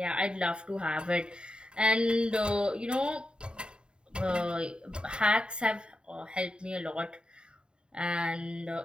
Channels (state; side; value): late; left; 0.051 ms